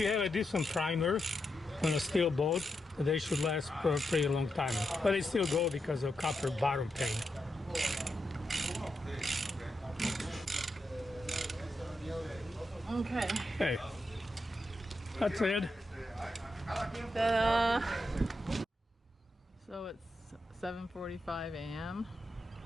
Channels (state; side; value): normal; both; correlation 0.85